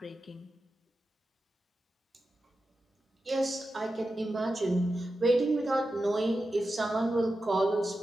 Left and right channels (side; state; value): both; normal; correlation 0.91